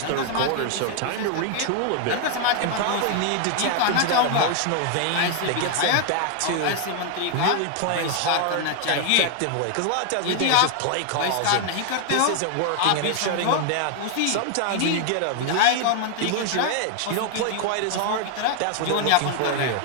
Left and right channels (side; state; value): both; different; correlation 0.00